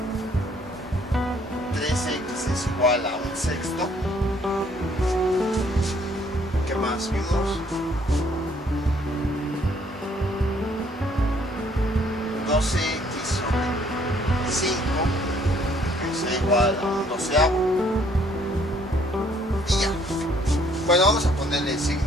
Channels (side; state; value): both; normal; correlation 0.63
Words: 3x es igual a un sexto. ¿Qué más vimos? 12x sobre 5 es igual a un doceavo. Y ya. Bueno, vamos a ponerle